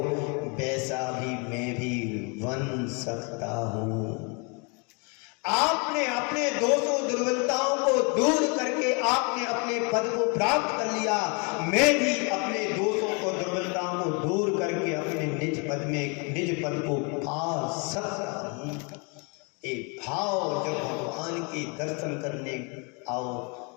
वैसा भी मैं भी बन सकता हूं। आपने अपने दोषों दुर्बलताओं को दूर करके आपने अपने पद को प्राप्त कर लिया, मैं भी अपने दोषों को दुर्बलताओं को दूर करके अपने निज पद में निज पद को पा सकता हूं। एक भाव जब भगवान के दर्शन करने आओ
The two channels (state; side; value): quieter; right; 33.5 dB